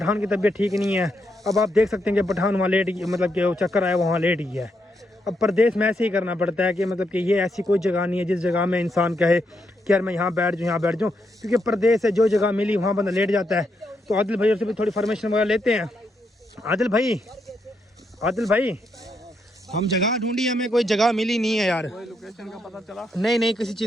की तबीयत ठीक नहीं है। अब आप देख सकते हैं कि पठान वहाँ लेट गया, मतलब कि वो चक्कर आया वहाँ लेट गया है। अब परदेश में ऐसे ही करना पड़ता है कि मतलब कि ये ऐसी कोई जगह नहीं है जिस जगह में इंसान कहे कि यार मैं यहाँ बैठ जाऊँ। क्योंकि परदेश है, जो जगह मिली वहाँ बंदा लेट जाता है। तो आदिल भाई से भी थोड़ी फॉर्मेशन वगैरह लेते हैं। आदिल भाई हम जगह ढूंढी, हमें कोई जगह मिली नहीं है यार। कोई लोकेशन का पता चला? नहीं किसी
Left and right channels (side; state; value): both; normal; correlation 0.79